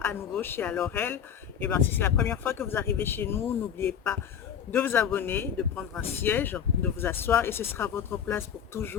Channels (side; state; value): right; quieter; 8.4 dB